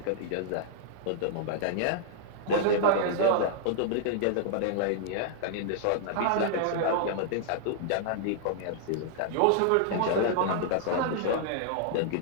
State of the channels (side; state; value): both; different; correlation -0.01